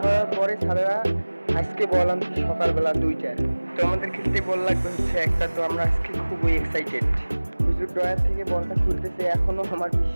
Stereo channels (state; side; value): inverted; both; correlation -1.00